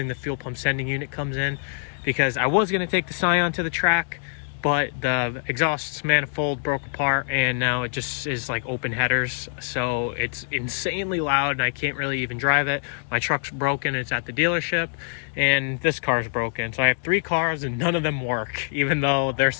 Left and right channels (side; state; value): right; silent; digital silence